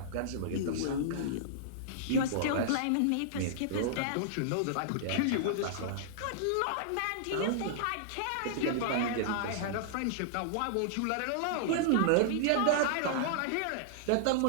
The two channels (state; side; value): different; both; correlation -0.01